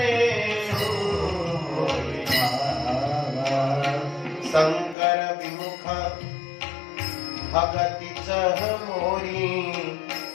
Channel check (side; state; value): right; drops out; at 5.0 s